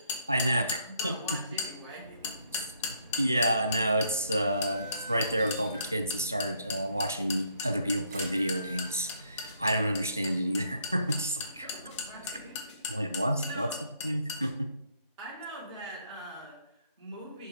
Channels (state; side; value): inverted; both; correlation -0.71